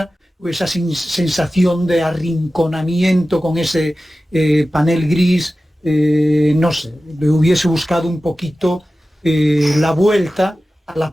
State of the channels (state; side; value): normal; both; correlation 0.95